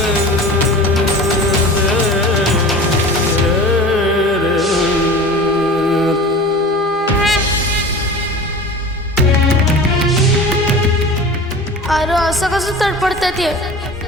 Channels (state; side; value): normal; both; correlation 0.37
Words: अरे असं कसं तडपडतात ये.